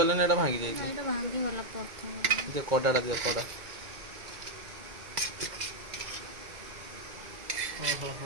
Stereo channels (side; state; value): left; late; 2.1 ms